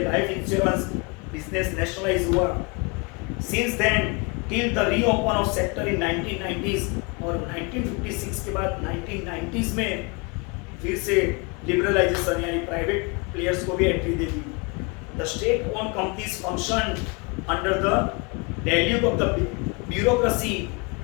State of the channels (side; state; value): right; quieter; 30.3 dB